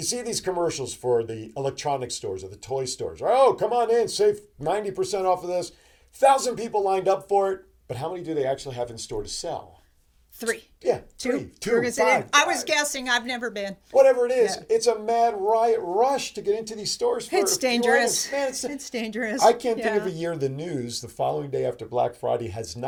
see these commercials for the electronic stores or the toy stores. Oh, come on in, save 90% off of this. 1,000 people lined up for it. But how many do they actually have in store to sell? 3. Yeah, 2. 5. I was guessing. I've never been. Whatever it is, it's a mad riot rush to get into these stores. It's dangerous. Man, it's dangerous. I can't think of a year the news the following day after Black Friday has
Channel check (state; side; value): identical; both; correlation 1.00